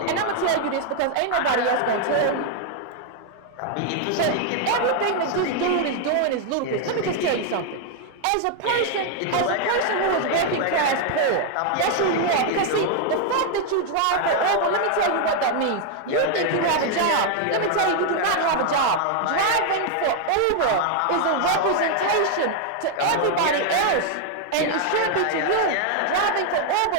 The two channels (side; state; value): both; different; correlation 0.00